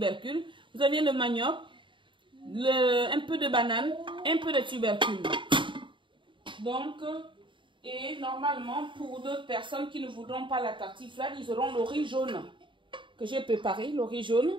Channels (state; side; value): late; left; 0.24 ms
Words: Vous avez le manioc, un peu de banane, un peu de tubercules. Donc, et normalement, pour d'autres personnes qui ne voudront pas la tartiflette, ils auront le riz jaune que j'ai préparé, le riz jaune.